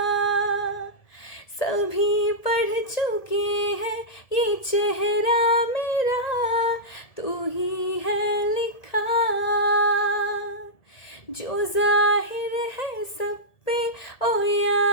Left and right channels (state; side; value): late; right; 1.7 ms